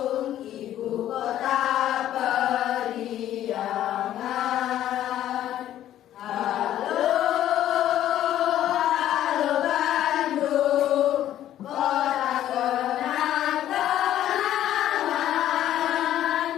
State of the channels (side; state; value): right; quieter; 12.1 dB